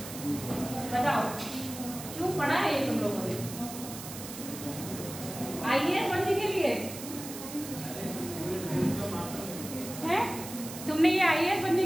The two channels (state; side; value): noise; right; hiss, 11 dB below the sound